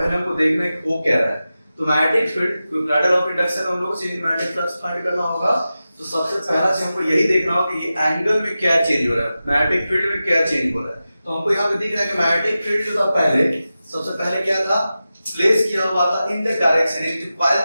हमको देखना है कि वो क्या रहा है। तो magnetic field, parallel of induction हम लोग चेंज मैग्नेटिक फ्लक्स फाइंड करना होगा, तो सबसे पहला चीज हमको यही देखना होगा कि ये एंगल में क्या चेंज हो रहा है, मैग्नेटिक फील्ड में क्या चेंज हो रहा है। तो हमको यहाँ पे दिख रहा है कि मैग्नेटिक फील्ड जो था पहले, सबसे पहले क्या था प्लेस किया हुआ था इन द डायरेक्शन, ये जो कॉइल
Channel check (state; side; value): inverted; both; correlation -0.93